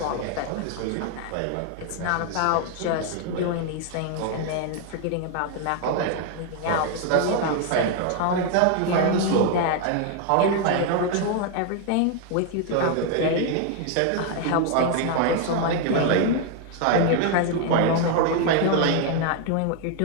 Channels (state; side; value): different; both; correlation 0.00